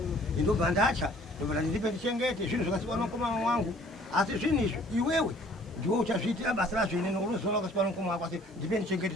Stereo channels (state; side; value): normal; both; correlation 0.56